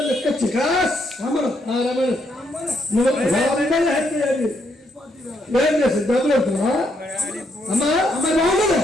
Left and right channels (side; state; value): both; normal; correlation 0.75